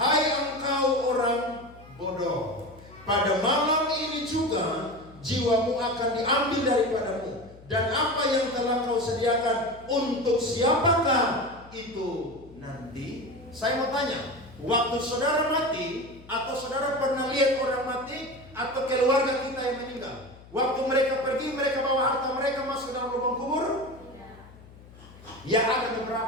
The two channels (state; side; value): noise; left; hum, 21 dB below the sound